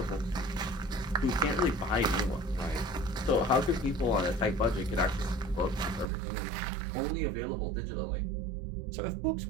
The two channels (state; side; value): drops out; left; at 6.1 s